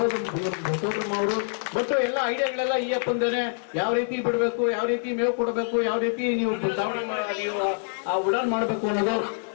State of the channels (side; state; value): right; silent; 57 dB below the other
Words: ಸೋದರಮ್ಮ ಅವರು. ಬಟ್ ಎಲ್ಲ ಐಡಿಯಾಗಳೆಲ್ಲ ಈ ಅಪ್ಪಂದೇನೆ. ಯಾವ ರೀತಿ ಬಿಡ್ಬೇಕು, ಯಾವ ರೀತಿ ಮೇವು ಕೊಡಬೇಕು, ಯಾವ ರೀತಿ ನೀವು ನೀವು ಆ ಉಡಾನ್ ಮಾಡ್ಬೇಕು ಅನ್ನೋದು.